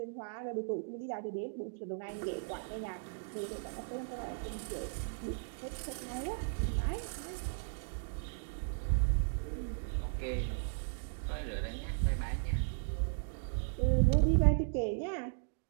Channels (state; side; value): silent; left; digital silence